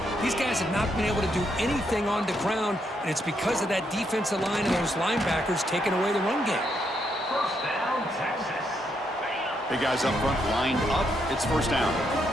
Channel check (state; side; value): normal; both; correlation 0.77